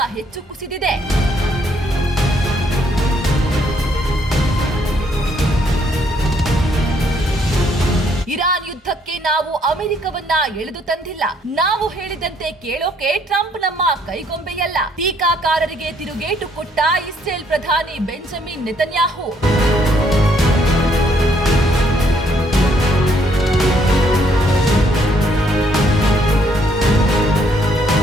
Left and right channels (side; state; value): both; normal; correlation 0.68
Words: ಹೆಚ್ಚು ಕುಸಿದಿದೆ. ಇರಾನ್ ಯುದ್ಧಕ್ಕೆ ನಾವು ಅಮೆರಿಕವನ್ನ ಎಳೆದು ತಂದಿಲ್ಲ. ನಾವು ಹೇಳಿದಂತೆ ಕೇಳೋಕೆ ಟ್ರಂಪ್ ನಮ್ಮ ಕೈಗೊಂಬೆಯಲ್ಲ. ಟೀಕಾಕಾರರಿಗೆ ತಿರುಗೇಟು ಕೊಟ್ಟ ಇಸ್ರೇಲ್ ಪ್ರಧಾನಿ ಬೆಂಜಮಿನ್ ನೆತನ್ಯಾಹು.